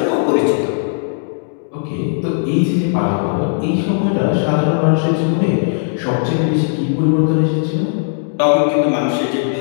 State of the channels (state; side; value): silent; right; digital silence